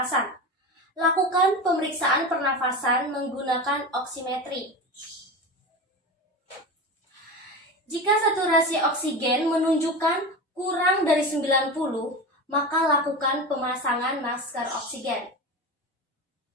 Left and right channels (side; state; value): both; normal; correlation 0.25